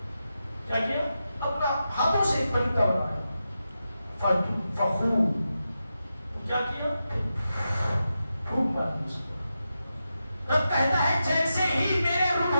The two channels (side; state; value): both; inverted; correlation -0.89